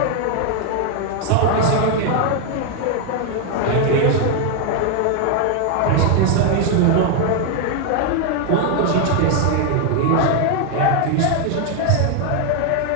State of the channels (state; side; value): different; both; correlation 0.00